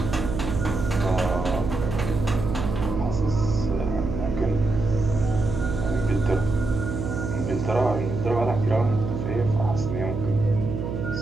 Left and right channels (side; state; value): right; noise; hum, 4 dB below the sound